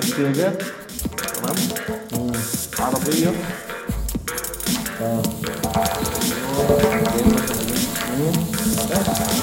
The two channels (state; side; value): identical; both; correlation 1.00